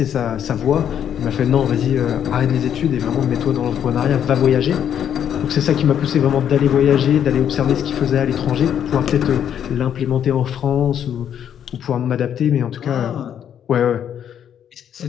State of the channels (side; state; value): right; quieter; 9.3 dB